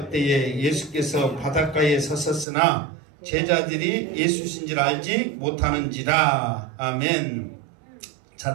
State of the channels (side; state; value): left; drops out; at 2.5 s